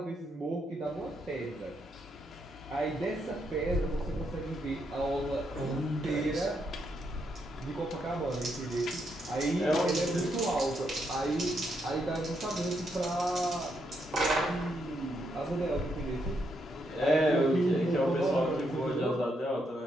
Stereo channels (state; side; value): normal; both; correlation 0.78